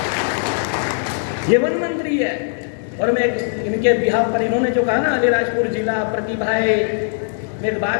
ये वन मंत्री है, और मैं इनके बिहाफ पर, इन्होंने जो कहा ना अलीराजपुर जिला प्रतिभाएं, मैं एक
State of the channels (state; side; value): silent; right; digital silence